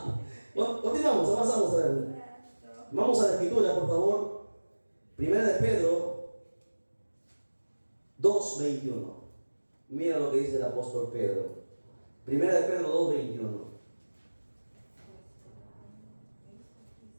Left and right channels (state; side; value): inverted; both; correlation -1.00